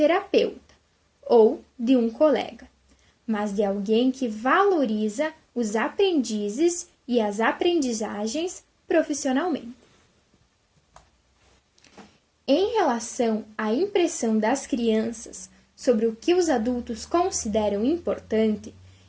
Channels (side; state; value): both; identical; correlation 1.00